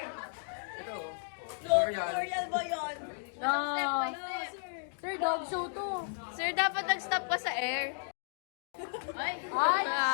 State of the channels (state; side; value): silent; right; digital silence